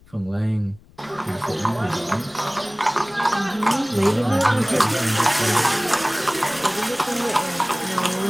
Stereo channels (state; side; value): noise; left; rumble, 27 dB below the sound